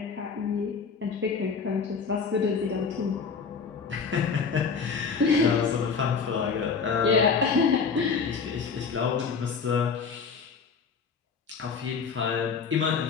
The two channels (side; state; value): right; quieter; 5.5 dB